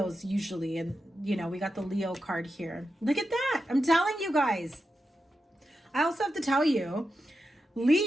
usually. And, you know, we got the Leo card here. Look at that. I'm telling you guys. I also have to tell you,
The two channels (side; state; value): both; normal; correlation 0.89